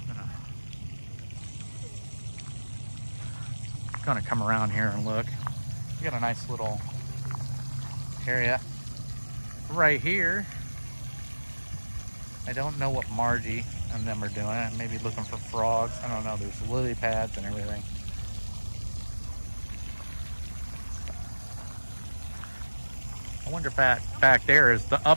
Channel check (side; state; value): both; inverted; correlation -1.00